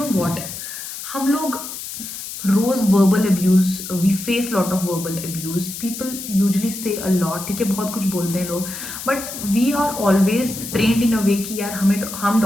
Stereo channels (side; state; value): left; noise; hiss, 9 dB below the sound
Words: what, हम लोग रोज verbal abuse, we face lot of verbal abuse, people usually say a lot, ठीक है, बहुत कुछ बोलते हैं लोग, but we are always trained in a way कि यार हम